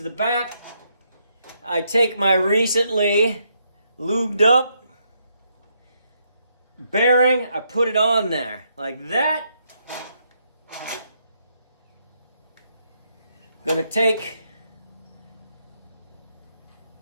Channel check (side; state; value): both; inverted; correlation -0.76